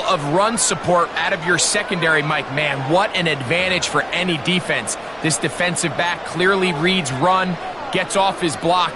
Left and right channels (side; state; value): right; noise; rumble, 29 dB below the sound